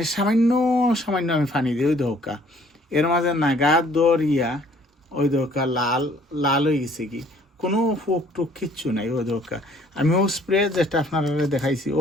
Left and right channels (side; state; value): both; normal; correlation 0.59